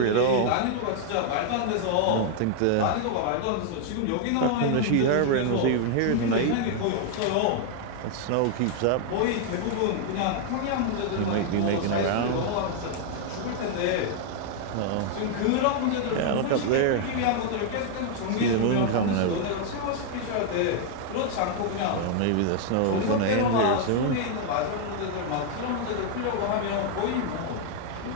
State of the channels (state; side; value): different; both; correlation 0.00